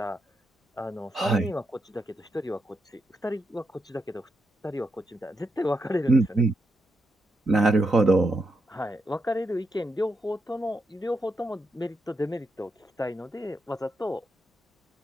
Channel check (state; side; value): normal; both; correlation 0.83